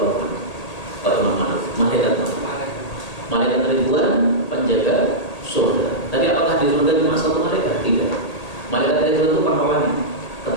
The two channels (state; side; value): late; right; 1.8 ms